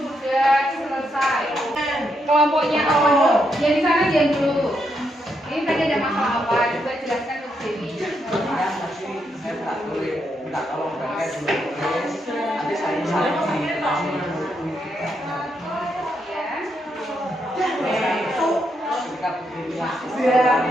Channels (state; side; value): normal; both; correlation 0.79